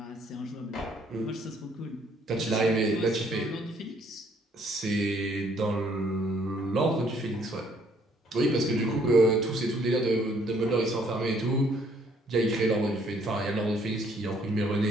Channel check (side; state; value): both; normal; correlation 0.64